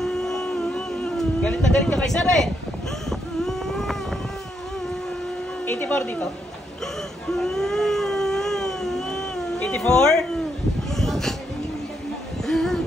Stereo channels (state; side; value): normal; both; correlation 0.78